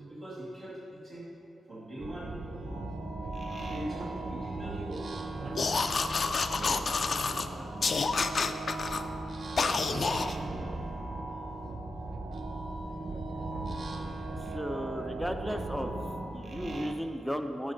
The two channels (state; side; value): normal; both; correlation 0.88